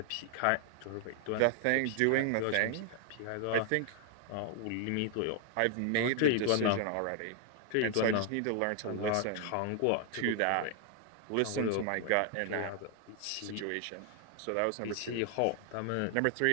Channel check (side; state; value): both; different; correlation 0.00